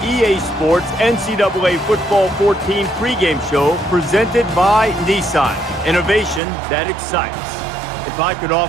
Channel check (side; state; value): left; drops out; at 6.4 s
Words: EA Sports NCAA Football 14 pregame show presented by Nissan. Innovation that excites. If I could